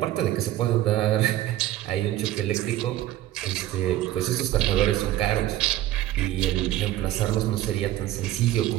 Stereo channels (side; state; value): left; quieter; 14.2 dB